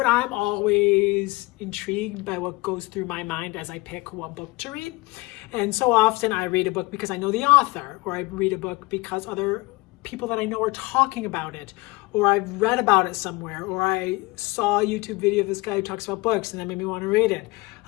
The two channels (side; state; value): right; quieter; 23.4 dB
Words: I'm always intrigued by what goes through my mind as I pick what book to read. And so often I read a book because I know the author, or I read a book because other people that I know are talking about it, or I've read about it somewhere, or I saw a YouTube video of this guy who talks about books and that made me want to read it.